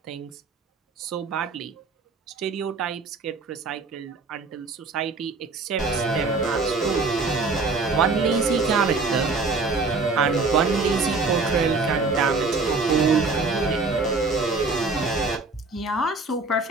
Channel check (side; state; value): left; quieter; 3.9 dB